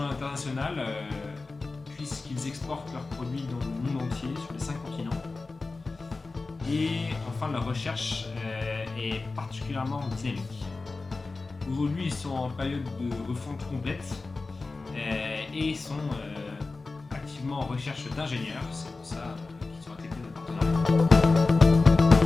l'international puisqu'ils exportent leurs produits dans le monde entier, sur les 5 continents. Et enfin, leur recherche est particulièrement dynamique. Aujourd'hui, ils sont en période de refonte complète et sont activement en recherche d'ingénieurs. C'est pour ça qu'ils sont intégrés dans le partenariat.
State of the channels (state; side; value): quieter; right; 3.7 dB